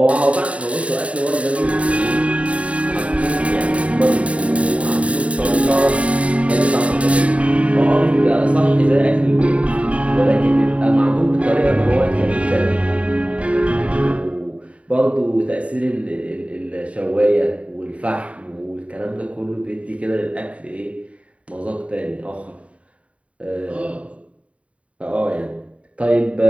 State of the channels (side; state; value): left; late; 0.064 ms